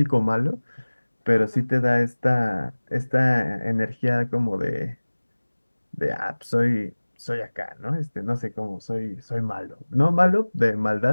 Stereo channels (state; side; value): inverted; both; correlation -1.00